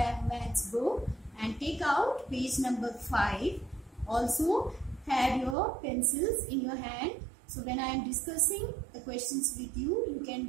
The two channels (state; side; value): drops out; left; at 5.6 s